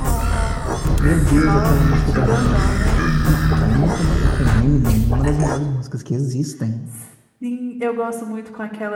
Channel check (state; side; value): identical; both; correlation 1.00